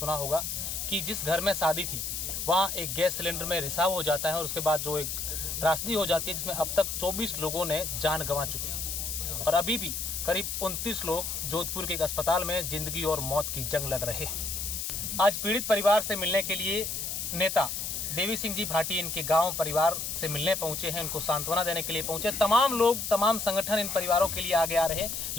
होगा कि जिस घर में शादी थी वहां एक गैस सिलेंडर में रिसाव हो जाता है और उसके बाद जो एक त्रासदी हो जाती है जिसमें अब तक 24 लोगों ने जान गंवा चुकी है और अभी भी करीब 29 लोग जोधपुर के एक अस्पताल में जिंदगी और मौत की जंग लड़ रहे हैं। आज पीड़ित परिवार से मिलने के लिए नेता देवी सिंह जी भाटी इनके गांव परिवार से मिलने पहुंचे हैं, उनको सांत्वना देने के लिए पहुंचे। तमाम लोग, तमाम संगठन इन परिवारों के लिए आगे आ रहे हैं,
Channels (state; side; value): noise; left; hiss, 3 dB below the sound